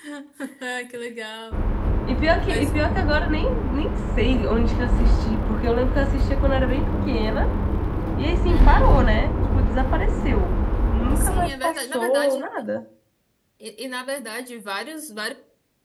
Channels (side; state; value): both; identical; correlation 1.00